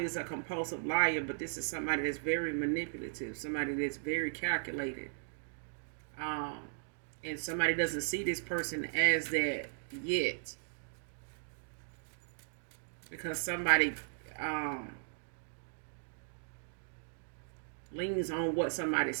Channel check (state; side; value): silent; left; digital silence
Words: is a compulsive liar, but this is somebody that's very manipulative, somebody that's very calculated, um, and somebody doesn't see this person as that yet because somebody um, leans on what somebody